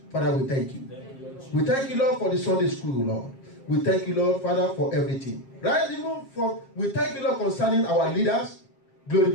Father, we thank you. We thank you, Lord, for the Sunday school, Lord. We thank you, Lord, Father, for everything. Right, even from, we thank you, Lord, concerning our leaders. Glory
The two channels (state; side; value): late; right; 7.4 ms